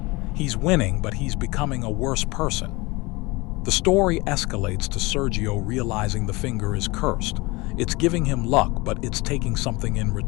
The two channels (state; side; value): quieter; right; 23.8 dB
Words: He's winning, but he's becoming a worse person. The story escalates to Sergio realizing the finger is cursed. It's giving him luck, but it's taking something in